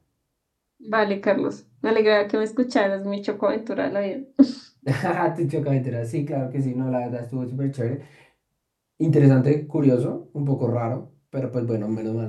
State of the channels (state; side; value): identical; both; correlation 1.00